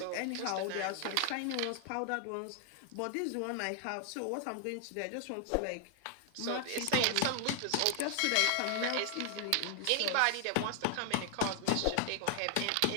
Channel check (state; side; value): different; both; correlation 0.00